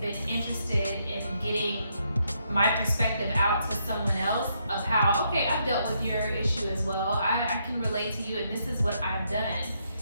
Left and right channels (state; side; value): inverted; both; correlation -0.76